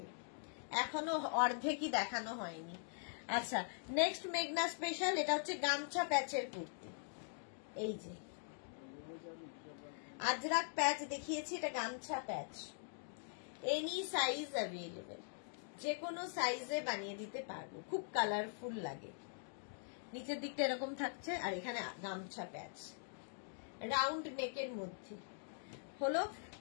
এখনো অর্ধেকই দেখানো হয়নি। আচ্ছা নেক্সট মেঘনা স্পেশাল, এটা হচ্ছে গামছা প্যাচের কুর্তি। এই যে আজরাক প্যাচ দেখিয়েছি, এটা গামছা প্যাচ, এনি সাইজ অ্যাভেলেবেল, যে কোনো সাইজে বানিয়ে দিতে পারবো। খুব কালারফুল লাগে, নিচের দিকটা এরকম থাকছে, আর এখানে গামছা প্যাচ, রাউন্ড নেকের মধ্যে হলো,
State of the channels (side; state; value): right; silent; digital silence